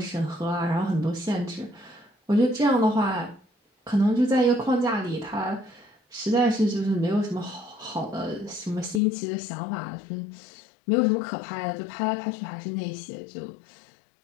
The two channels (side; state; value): right; drops out; at 9.0 s